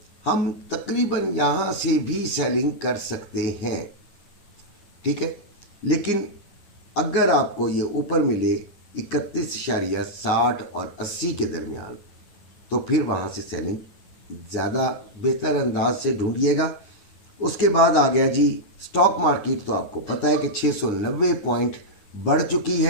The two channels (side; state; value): right; late; 9.8 ms